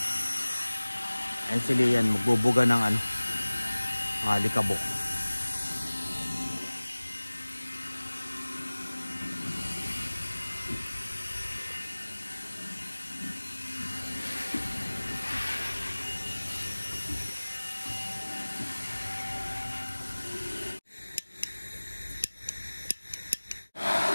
Ayun si Leia, magbubuga ng ano, mga alikabok.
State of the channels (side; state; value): both; inverted; correlation -1.00